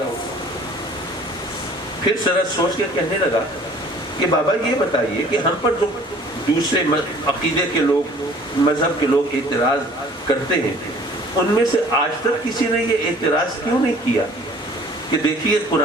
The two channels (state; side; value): normal; both; correlation 0.52